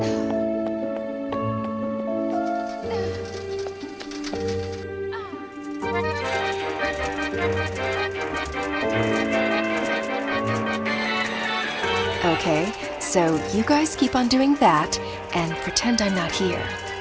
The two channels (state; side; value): identical; both; correlation 1.00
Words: Okay, so you guys keep on doing that and pretend I'm not here.